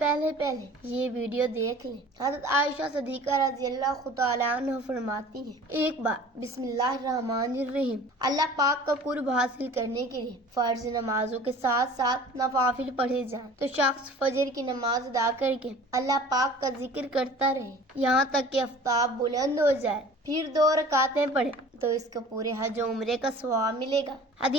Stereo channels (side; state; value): both; normal; correlation 0.45